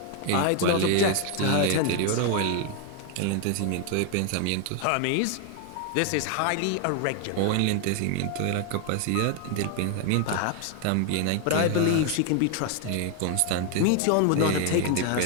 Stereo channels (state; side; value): different; both; correlation 0.00